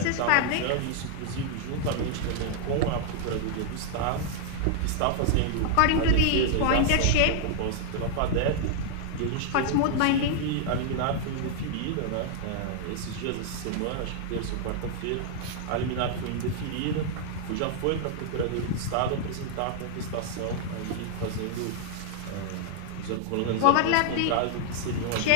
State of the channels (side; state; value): both; different; correlation -0.01